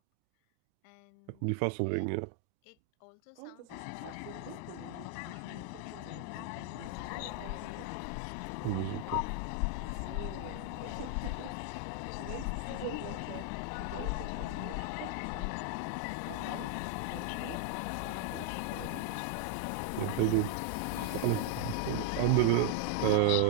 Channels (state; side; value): different; both; correlation 0.00